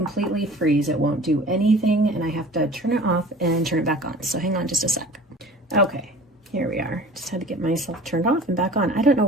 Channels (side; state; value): both; normal; correlation 0.44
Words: freeze. It won't do anything, and I have to turn it off and turn it back on. So hang on just a sec. Okay, here we are. Just had to get myself turned off and back on. I don't know